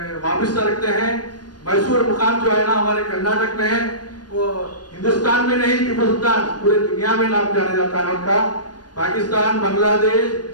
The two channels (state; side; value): late; right; 0.69 ms